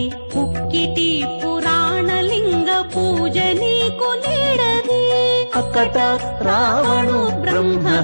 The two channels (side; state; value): both; inverted; correlation -1.00